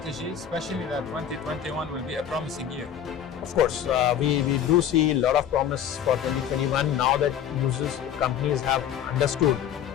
especially that 2021 will be a promising year. Of course, we do see a lot of promise for 2021 now that companies have understood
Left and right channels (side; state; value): right; quieter; 9.3 dB